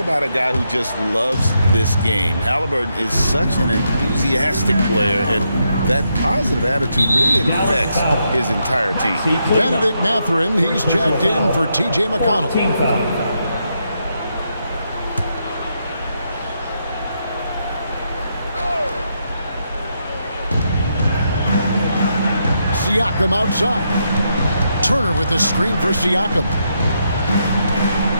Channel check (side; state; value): both; inverted; correlation -0.80